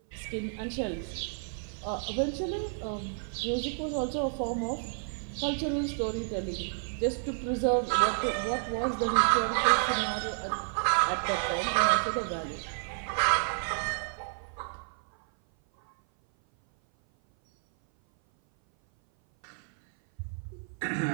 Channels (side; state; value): left; silent; 56 dB below the other